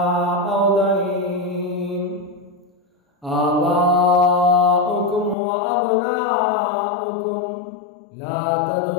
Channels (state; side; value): drops out; right; at 5.4 s